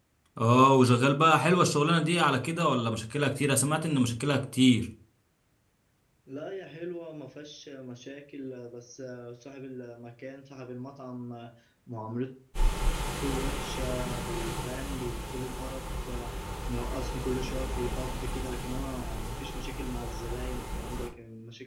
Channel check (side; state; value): both; identical; correlation 1.00